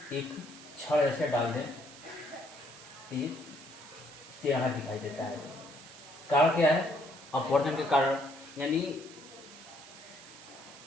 एक छड़ ऐसे डाल दें तो ये टेढ़ा दिखाई देता है। कारण क्या है, अपवर्तन के कारण। यानी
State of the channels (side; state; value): right; noise; hiss, 18 dB below the sound